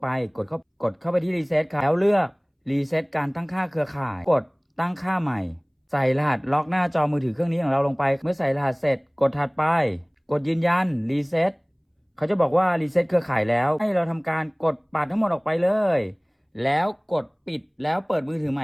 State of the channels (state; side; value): identical; both; correlation 1.00